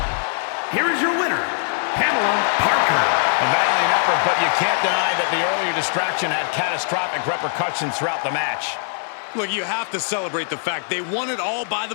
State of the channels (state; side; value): silent; right; 57 dB below the other